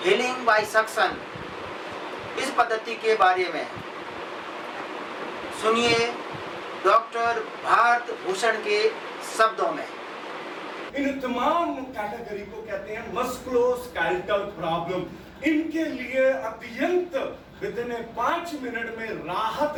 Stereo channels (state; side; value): identical; both; correlation 1.00